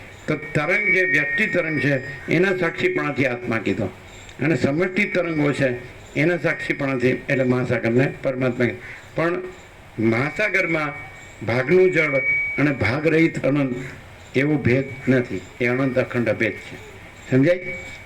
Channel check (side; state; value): both; identical; correlation 1.00